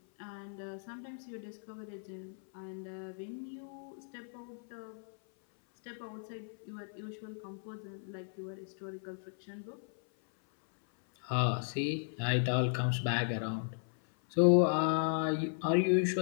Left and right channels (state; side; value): silent; right; 54 dB below the other